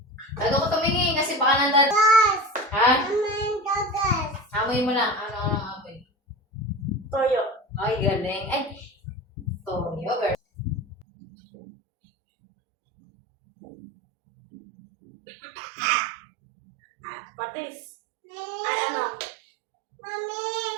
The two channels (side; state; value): left; drops out; at 11.1 s